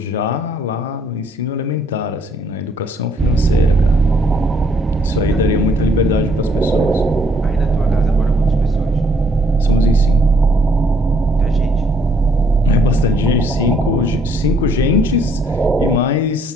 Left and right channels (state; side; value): normal; both; correlation 0.66